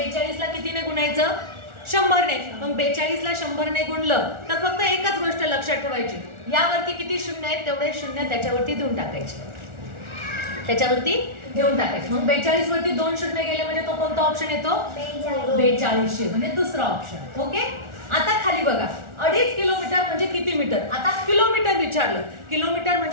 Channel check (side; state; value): left; late; 1.4 ms